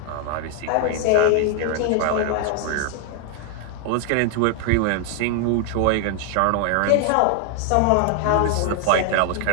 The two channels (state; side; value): different; both; correlation 0.00